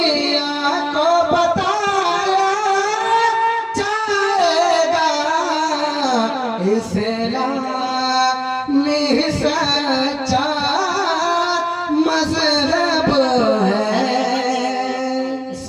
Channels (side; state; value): both; identical; correlation 1.00